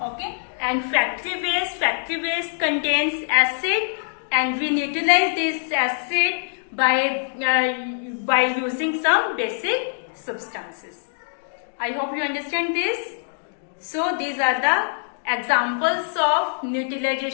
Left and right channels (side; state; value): right; silent; digital silence